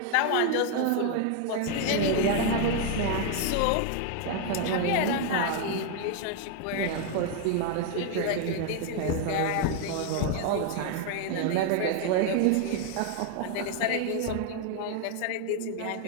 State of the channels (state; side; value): different; both; correlation 0.01